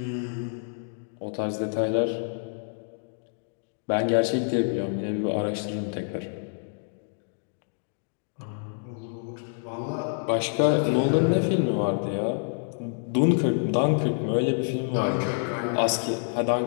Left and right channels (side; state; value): right; silent; digital silence